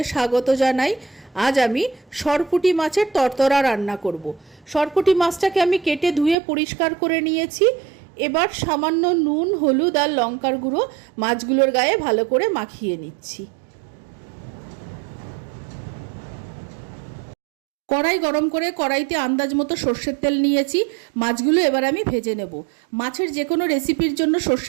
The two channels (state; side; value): drops out; left; at 6.4 s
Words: স্বাগত জানাই। আজ আমি সরপুঁটি মাছের তরতরা রান্না করব। সরপুঁটি মাছটাকে আমি কেটে ধুয়ে পরিষ্কার করে নিয়েছি। এবার সামান্য নুন, হলুদ আর লঙ্কার গুঁড়ো মাছগুলোর গায়ে ভালো করে মাখিয়ে নিচ্ছি। কড়াই গরম করে কড়াইতে আন্দাজ মতো সর্ষের তেল নিয়েছি। মাছগুলো এবার আমি ভেজে নেব। মাছের যে কোনো রেসিপির জন্য